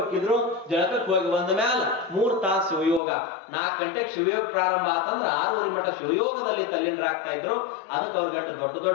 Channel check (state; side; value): drops out; right; at 3.0 s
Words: ಜಳಕಕ್ಕೆ ಹೋಗಿ ಬಂದ ಮ್ಯಾಲ 3 ತಾಸು ಶಿವಯೋಗ. 4 ಗಂಟೆಗೆ ಶಿವಯೋಗ ಪ್ರಾರಂಭ ಆತಂದ್ರ 6ವರೆ ಮಠ ಶಿವಯೋಗದಲ್ಲಿ ತಲ್ಲೀನರಾಗ್ತಾ ಇದ್ರು. ಅದಕ್ಕೆ ಅವ್ರಿಗಟ್ಟು ದೊಡ್ಡ